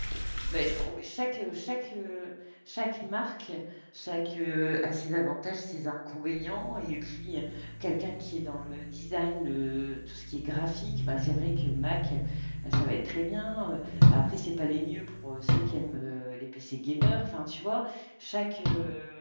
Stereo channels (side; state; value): both; inverted; correlation -1.00